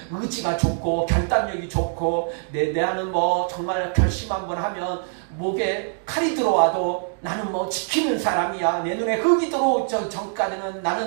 의지가 좋고 결단력이 좋고 나는 뭐 정말 결심 한번 하면 목에 칼이 들어와도 나는 뭐 지키는 사람이야. 내 눈에 흙이 들어오기 전까지는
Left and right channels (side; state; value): left; silent; digital silence